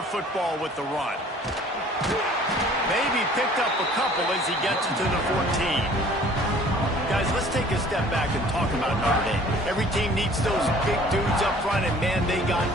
football with the run. Maybe picked up a couple as he gets it to the 14. Guys, let's take a step back and talk about Notre Dame. Every team needs those big dudes up front, and, man, they got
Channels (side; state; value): both; normal; correlation 0.52